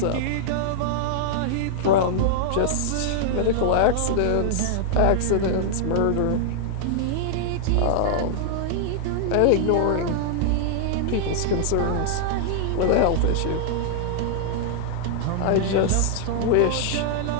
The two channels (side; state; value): both; different; correlation -0.01